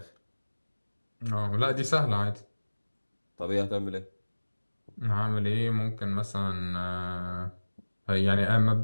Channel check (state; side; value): inverted; both; correlation -1.00